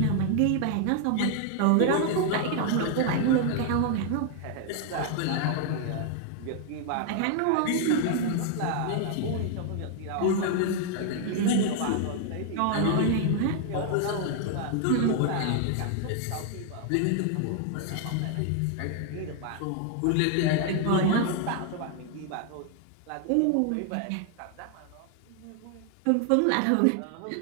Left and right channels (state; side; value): different; both; correlation 0.00